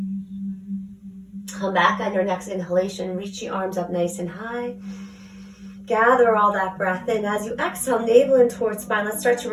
Come back on your next inhalation, reach the arms up nice and high. Gather all that breath in. As you exhale, navel in towards spine, let's start to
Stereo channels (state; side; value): identical; both; correlation 1.00